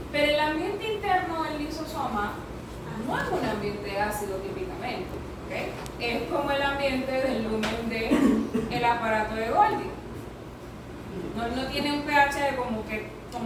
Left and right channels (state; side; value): identical; both; correlation 1.00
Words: Pero el ambiente interno del lisosoma no es un ambiente ácido típicamente, ¿okay? Es como el ambiente del lumen del aparato de Golgi. No tiene un pH